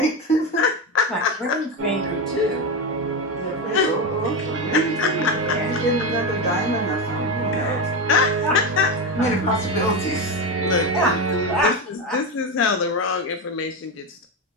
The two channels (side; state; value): both; normal; correlation 0.14